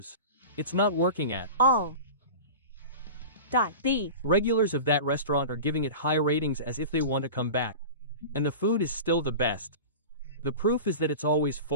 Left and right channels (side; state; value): both; inverted; correlation -0.32